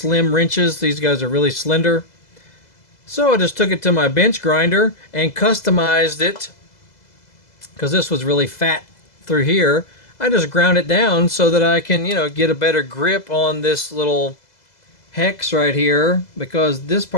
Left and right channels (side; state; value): right; late; 2.0 ms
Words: wrenches. These guys are really slender. So I just took it to my bench grinder and customized it, because this was really fat through here. I just ground it down so that I can, get a better grip on this little hex right here, because this